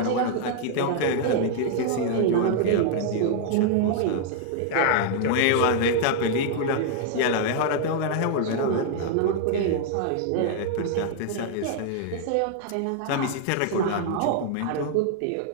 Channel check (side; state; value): both; different; correlation -0.01